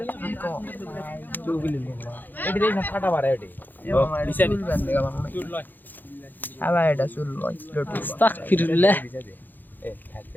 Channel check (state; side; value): late; right; 0.088 ms